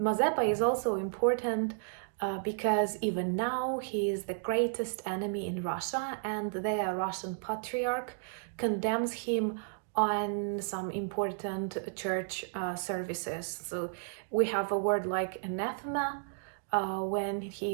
is also important because even now he is the greatest enemy in Russia, and the Russian Patriarch condemns him on some important church services. So we have a word like anathema when he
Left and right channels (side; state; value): left; silent; digital silence